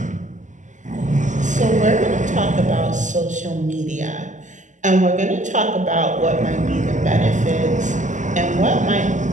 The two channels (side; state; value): left; late; 0.36 ms